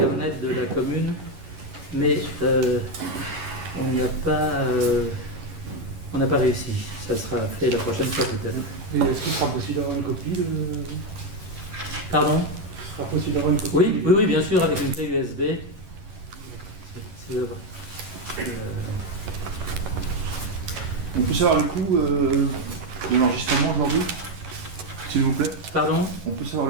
de la commune, mais on n'a pas réussi. Ça sera fait la prochaine fois peut-être. Et est-ce qu'il sera possible d'avoir une copie de... Pardon? Il sera possible d'avoir une copie Oui, bien sûr, avec une clé USB. On peut savoir le coût de l'enregistrement aujourd'hui, s'il vous plaît? Pardon? On peut savoir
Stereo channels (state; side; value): late; left; 11 ms